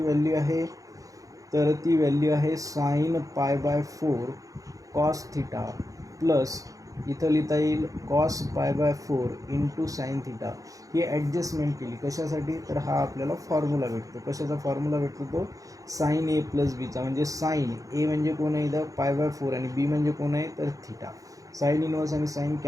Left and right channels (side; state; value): left; late; 0.17 ms